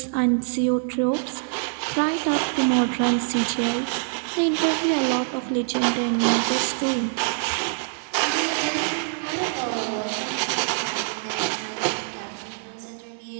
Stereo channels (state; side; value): silent; left; digital silence